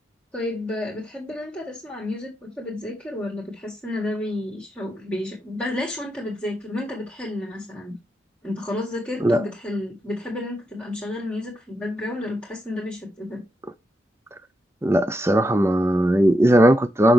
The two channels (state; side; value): normal; both; correlation 0.84